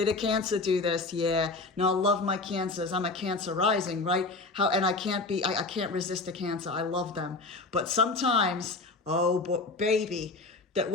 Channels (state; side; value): quieter; right; 3.5 dB